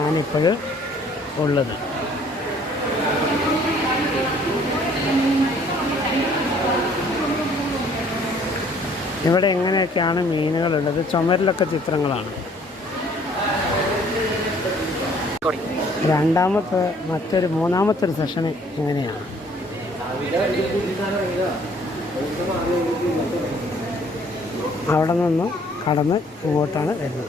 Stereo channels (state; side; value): normal; both; correlation 0.59